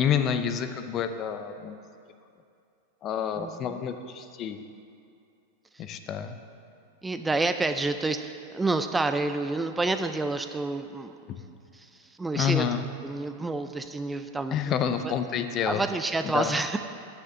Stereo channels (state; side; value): normal; both; correlation 0.62